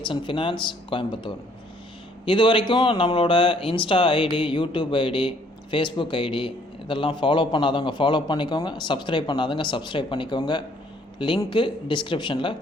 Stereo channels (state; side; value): normal; both; correlation 0.62